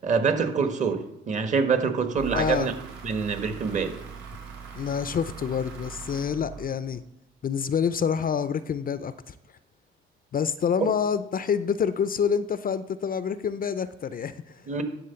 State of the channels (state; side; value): normal; both; correlation 0.39